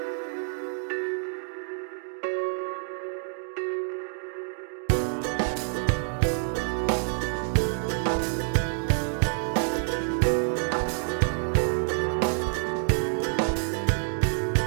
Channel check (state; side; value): silent; left; 60 dB below the other